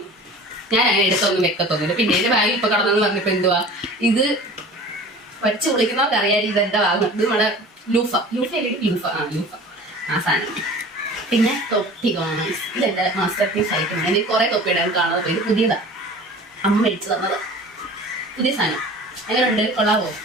ഞാൻ അങ്ങനെ എടുത്തൊന്നും വെക്കത്തൊന്നുമില്ല. പിന്നെ എന്റെ ബാഗിൽ ഇപ്പൊ കടന്നെന്ന് പറഞ്ഞപ്പോ എന്തുവാ ഇത് വച്ച് വിളിക്കുന്നവർക്ക് അറിയാൻ ഇതെന്താ വാങ്ങുന്നത്. ഇത് നമ്മുടെ ലൂഫ ആ സാധനം. പിന്നെ തൊപ്പി കാണാം. ഇതെന്റെ മാസ്റ്റർ പീസ് ആയിട്ടാണ്. എനിക്ക് കുറെ തൊപ്പി ഇടാൻ കാണാതെ. ഇത് പുതിയതാ, അമ്മ മേടിച്ചു തന്നത് പുതിയ സാധനം. എങ്ങനെയുണ്ട്, കൊള്ളാവോ?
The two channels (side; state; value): both; normal; correlation 0.41